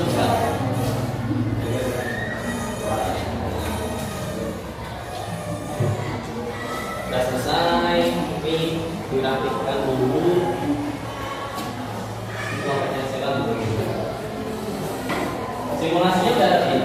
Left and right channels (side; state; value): both; identical; correlation 1.00